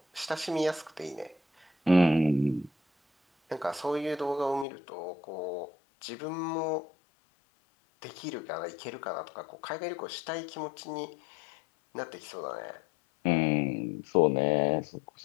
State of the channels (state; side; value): drops out; right; at 4.7 s